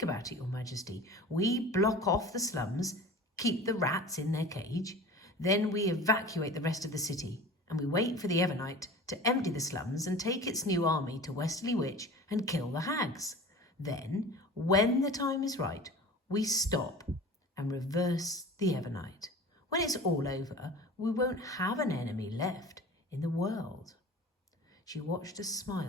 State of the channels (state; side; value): normal; both; correlation 0.38